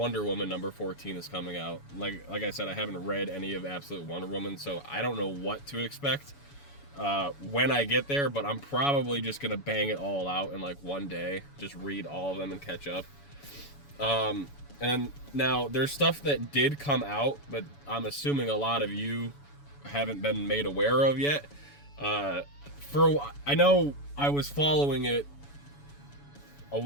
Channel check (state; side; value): late; right; 7.0 ms